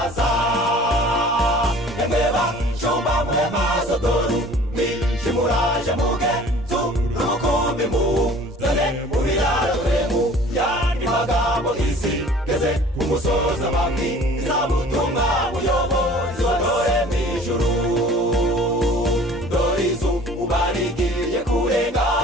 emeba shomba muhema sodoru mishimuraje mugenzu rukumbi muzane mubiraremu yandi magambo isi geze umusoza mami izabutumwa muyobozi wadore mwijuru dorizu ubarigiye kurenga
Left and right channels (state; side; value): normal; both; correlation 0.48